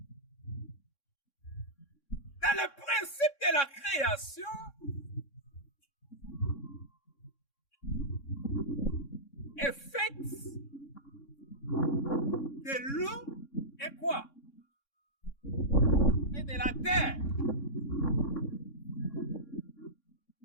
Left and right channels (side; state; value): right; late; 3.6 ms